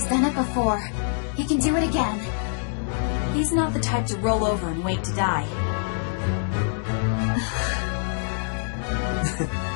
done it before. He can do it again. He's not the type to roll over and wait to die.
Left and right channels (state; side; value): silent; right; digital silence